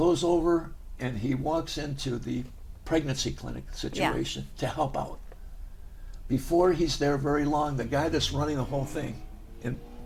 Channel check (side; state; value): both; identical; correlation 1.00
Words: over and he walks into the pregnancy clinic situation to help out. Before he's there very long, the guy that's running the whole thing in